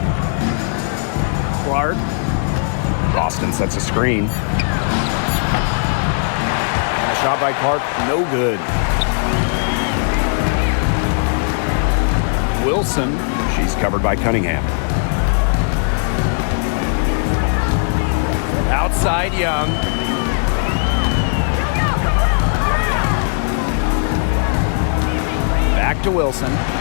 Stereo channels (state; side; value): silent; right; digital silence